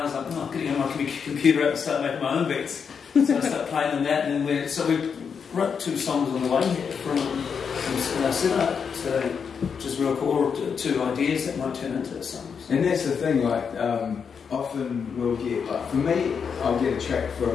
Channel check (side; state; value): right; quieter; 6.4 dB